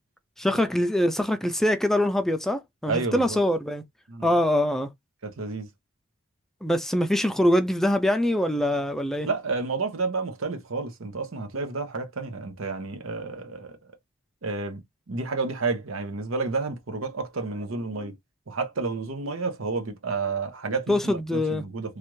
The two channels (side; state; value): both; normal; correlation 0.58